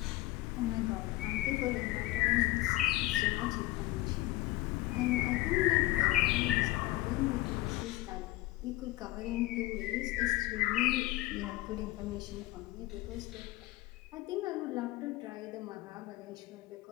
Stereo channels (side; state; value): right; quieter; 18.3 dB